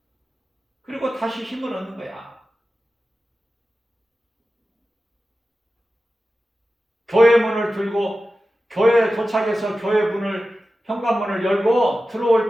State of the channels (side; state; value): both; normal; correlation 0.94